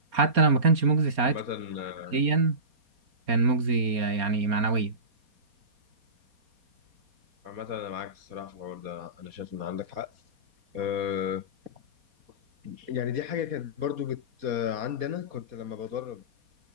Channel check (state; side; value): late; left; 4.3 ms